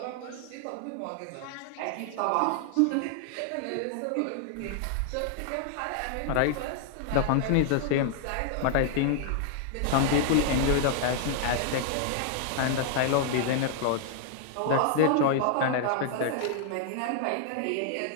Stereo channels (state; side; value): different; both; correlation 0.00